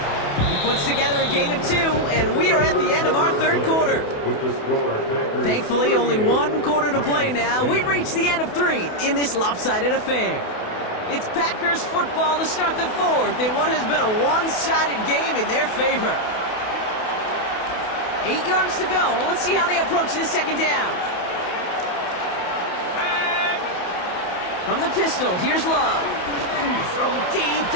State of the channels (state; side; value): late; right; 28 ms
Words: He puts together a gain of 2, and we are at the end of our 3rd quarter. Thankfully, only 1 quarter to play now. We've reached the end of 3 in this lopsided affair. It's Packers football to start the 4th in what has been a one-sided game in their favor. 8 yards to go. Let's see how they approach this 2nd down. From the pistol, here's Love. Throw it deep